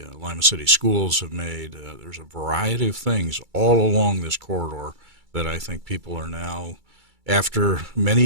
Lima City Schools have made. There's a variety of things all along this corridor that I think people are now, after many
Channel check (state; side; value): late; left; 2.3 ms